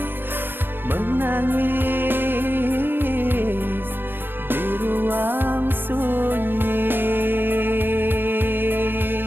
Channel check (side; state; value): left; late; 0.096 ms